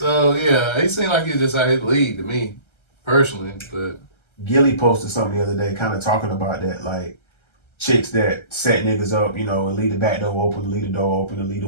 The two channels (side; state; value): right; late; 1.3 ms